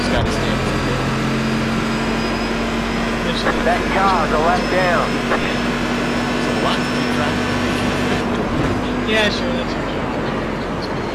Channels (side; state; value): both; identical; correlation 1.00